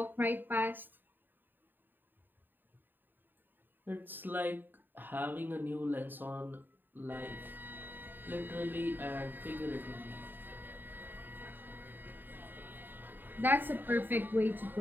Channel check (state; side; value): late; left; 0.092 ms